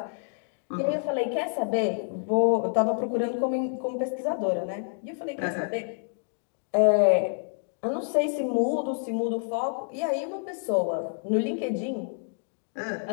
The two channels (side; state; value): right; silent; digital silence